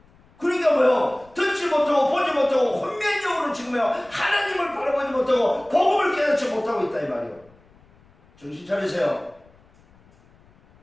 그러니까 듣지 못하고 보지 못하고 혼미한 영으로 지금 하나님을 바라보지 못하고 복음을 깨닫지 못하고 있다 이 말이에요. 정신 차리세요.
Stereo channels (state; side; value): noise; left; rumble, 29 dB below the sound